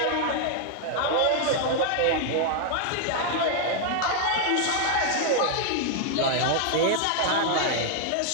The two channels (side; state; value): both; different; correlation 0.00